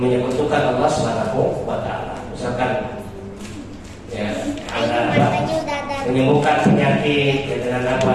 Allah Subhanahu wa Ta'ala. Misalkan ya, ada apa? Menyembuhkan penyakit dengan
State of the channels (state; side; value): identical; both; correlation 1.00